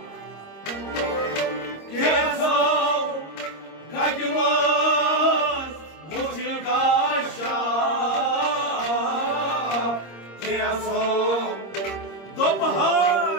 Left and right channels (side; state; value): right; late; 26 ms